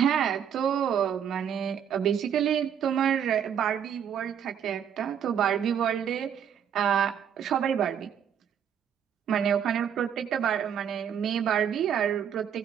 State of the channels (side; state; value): left; quieter; 8.6 dB